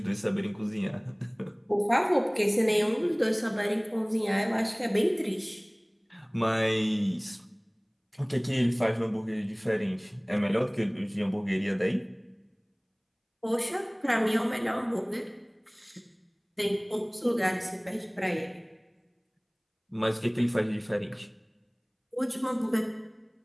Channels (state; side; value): identical; both; correlation 1.00